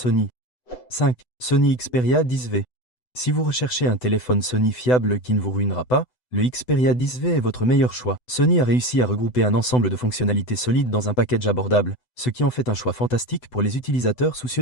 5. Sony Xperia 10V. Si vous recherchez un téléphone Sony fiable qui ne vous ruinera pas, le Xperia 10V est votre meilleur choix. Sony a réussi à regrouper un ensemble de fonctionnalités solides dans un package abordable, ce qui en fait un choix fantastique pour les utilisateurs soucieux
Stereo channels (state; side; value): late; right; 8.0 ms